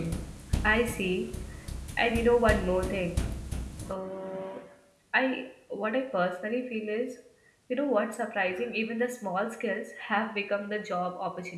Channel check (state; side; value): identical; both; correlation 1.00